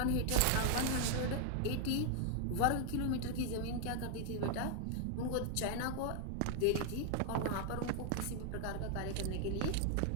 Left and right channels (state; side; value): different; both; correlation 0.00